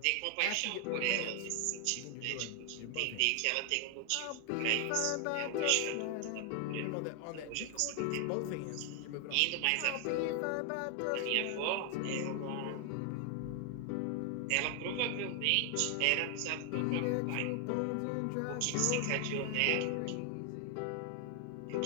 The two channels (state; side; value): different; both; correlation 0.00